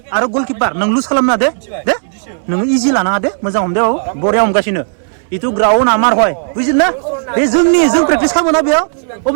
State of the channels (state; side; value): silent; left; digital silence